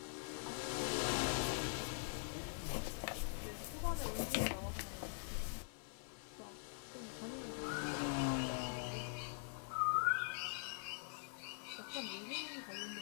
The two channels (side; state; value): right; silent; digital silence